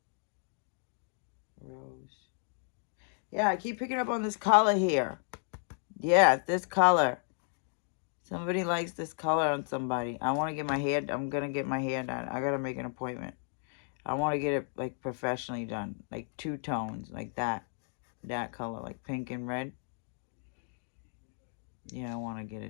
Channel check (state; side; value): silent; right; 56 dB below the other